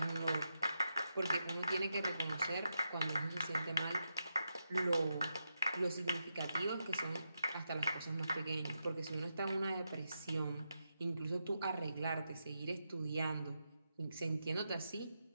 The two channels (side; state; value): both; inverted; correlation -0.86